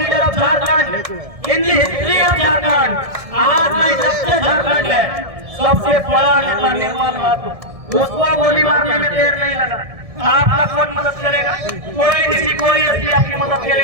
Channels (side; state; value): left; late; 1.6 ms